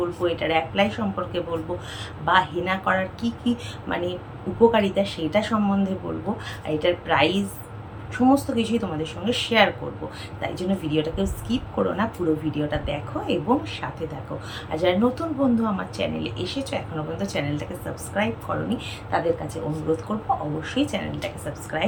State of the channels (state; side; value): identical; both; correlation 1.00